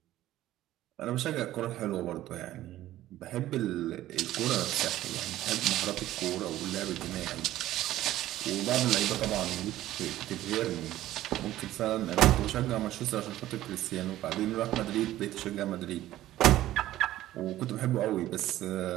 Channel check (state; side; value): quieter; left; 14.4 dB